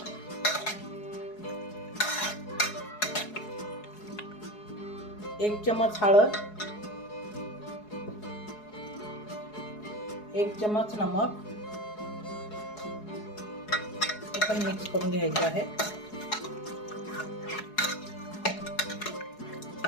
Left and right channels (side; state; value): right; late; 4.7 ms